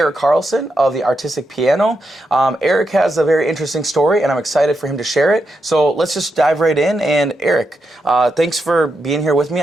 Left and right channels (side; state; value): both; normal; correlation 0.84